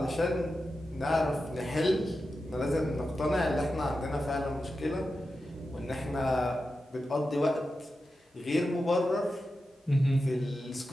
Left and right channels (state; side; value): normal; both; correlation 0.91